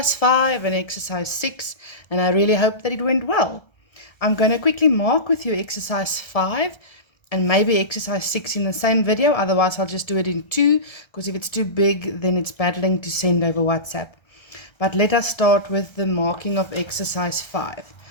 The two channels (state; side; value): late; right; 1.3 ms